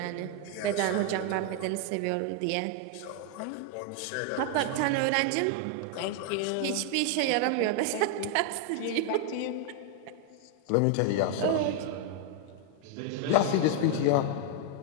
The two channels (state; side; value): different; both; correlation 0.00